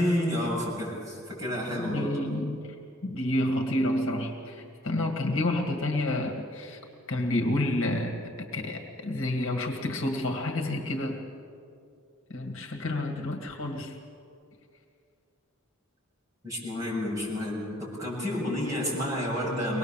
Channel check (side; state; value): both; normal; correlation 0.63